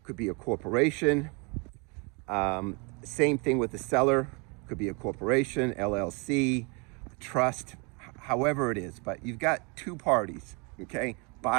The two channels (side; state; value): left; quieter; 31.7 dB